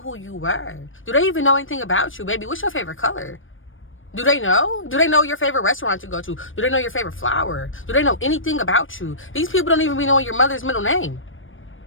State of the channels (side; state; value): right; late; 0.58 ms